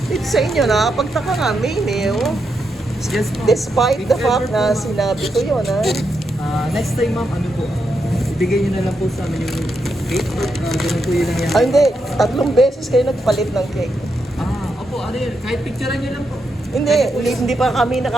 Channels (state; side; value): normal; both; correlation 0.83